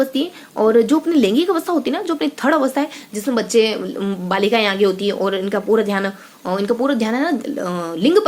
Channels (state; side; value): identical; both; correlation 1.00